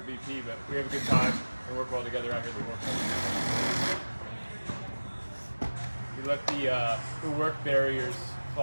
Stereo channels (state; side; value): inverted; both; correlation -1.00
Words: VP, but we have a good time and work well together out here at the World Cup. We let the work barriers